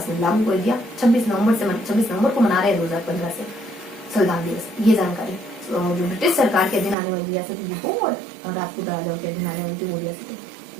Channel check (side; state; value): left; drops out; at 7.0 s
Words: में लागू कर दिया। 26 नवंबर को मना रहे हैं 2015 से संविधान दिवस। ये जानकारी जो ब्रिटिश सरकार के अधीन आने वाली रियासतें देखो और राजपूत राजाओं के अधीन आने वाली वो रियासतें,